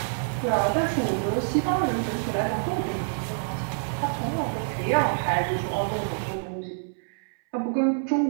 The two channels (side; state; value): left; silent; 60 dB below the other